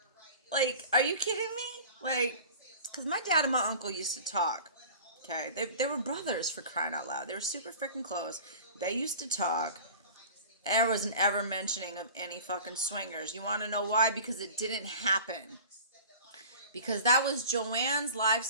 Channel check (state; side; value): inverted; both; correlation -0.40